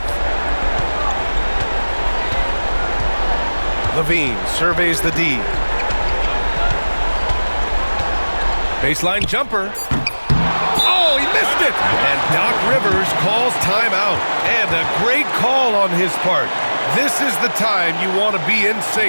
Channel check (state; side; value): inverted; both; correlation -1.00